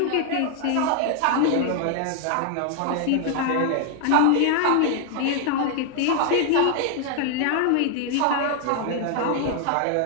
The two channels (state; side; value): different; both; correlation 0.00